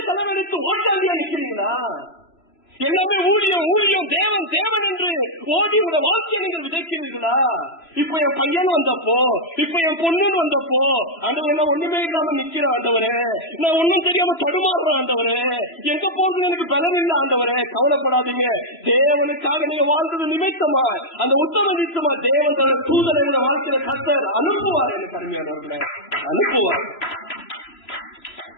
செலவழித்து ஓட்டாண்டியா நிக்கிறீங்களா? எல்லாமே ஊழியம் ஊழியம், தேவன் தேவன் என்று ஓடி உங்க வாழ்க்கையை நீங்கள் விதைக்கிறீர்களா? இப்ப என் பையன் வந்தப்போ, இப்ப என் பொண்ணுன்னு வந்தப்போ, ஆண்டவரே நான் ஒண்ணுமே இல்லாம நிக்கிறேன் ஆண்டவரே, நான் ஒன்னும் தெரியாம தடுமாறுறேன் ஆண்டவரே, எங்க போறது எனக்கு பலன் இல்லை ஆண்டவரே. கவலைப்படாதீங்க, தேவனுக்காக நீங்க வாழ்ந்தது நிமித்தமா, அந்த உத்தம நிமித்தமா தேவன் தன்னுடைய தூதரை உங்க வாழ்க்கையில கர்த்தர் அனுப்புவார். எனக்கு அருமையானவர்களே, அனுப்புவார்.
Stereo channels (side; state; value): right; late; 3.0 ms